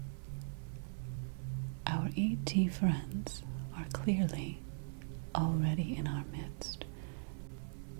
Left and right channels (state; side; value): silent; left; digital silence